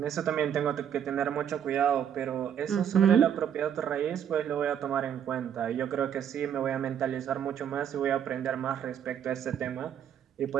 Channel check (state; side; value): quieter; left; 9.0 dB